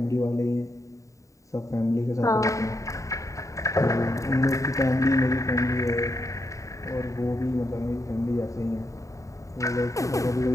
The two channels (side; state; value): right; late; 0.16 ms